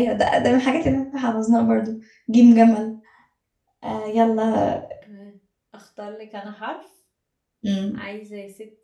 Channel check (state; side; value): identical; both; correlation 1.00